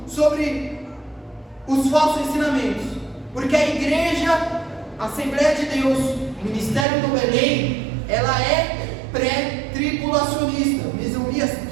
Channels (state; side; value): drops out; left; at 6.9 s